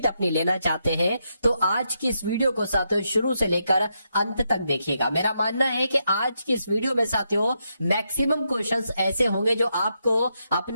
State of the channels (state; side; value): inverted; both; correlation -0.82